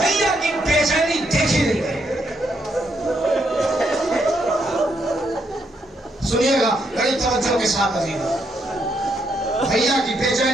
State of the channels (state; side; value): normal; both; correlation 0.77